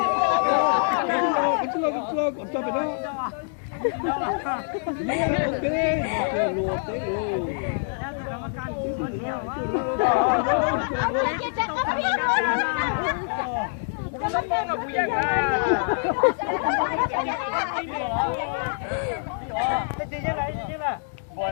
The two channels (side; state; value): right; silent; digital silence